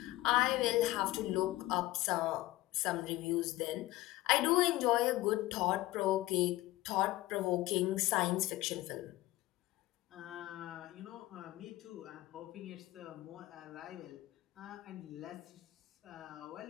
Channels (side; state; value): right; quieter; 17.6 dB